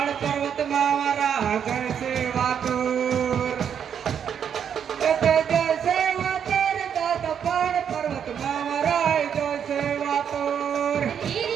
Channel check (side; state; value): left; quieter; 8.1 dB